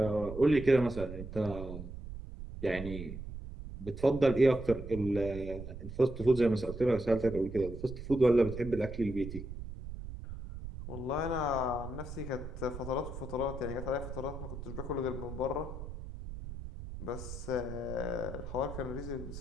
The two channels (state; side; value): noise; right; rumble, 10 dB below the sound